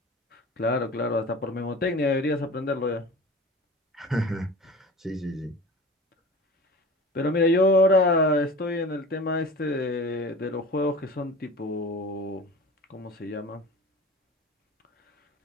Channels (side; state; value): both; normal; correlation 0.37